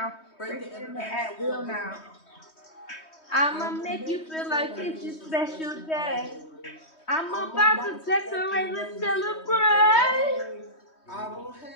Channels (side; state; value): right; late; 3.2 ms